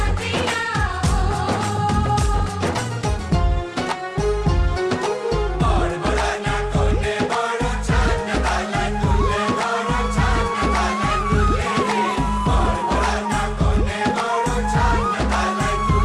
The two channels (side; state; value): both; identical; correlation 1.00